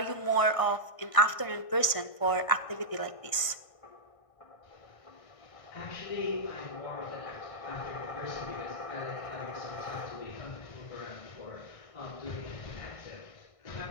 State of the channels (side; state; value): right; late; 1.6 ms